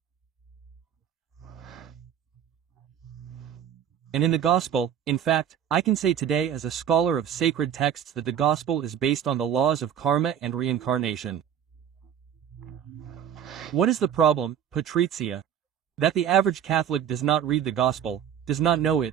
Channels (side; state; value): left; quieter; 9.2 dB